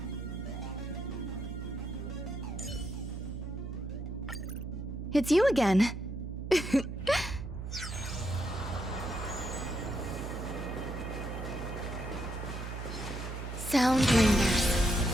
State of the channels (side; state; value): right; noise; hum, 6 dB below the sound